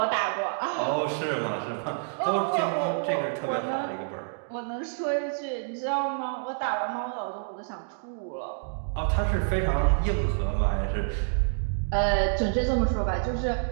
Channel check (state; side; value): silent; left; digital silence